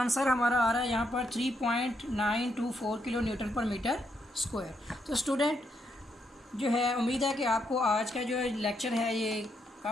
हमारा आ रहा है यहाँ पर 3.924 kilo newton per metre square. तो स्टूडेंट जो है, उम्मीद है कि आपको आज का जो लेक्चर है ये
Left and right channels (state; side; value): normal; both; correlation 0.78